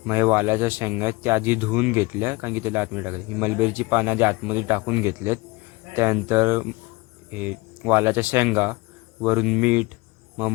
मग हे वालाच्या शेंगा आहेत त्या आधी धुवून घेतल्या, कारण की त्याला आतमध्ये टाकले. ही मलबेरीची पानं आधी आतमध्ये टाकून घेतलेत. त्यानंतर हे वालाच्या शेंगा, वरून मीठ, मग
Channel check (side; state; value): right; quieter; 23.5 dB